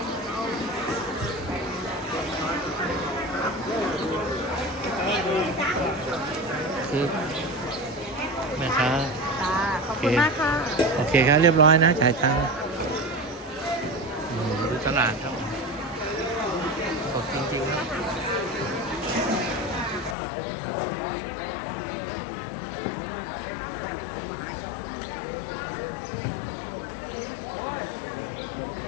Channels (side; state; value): right; drops out; at 20.2 s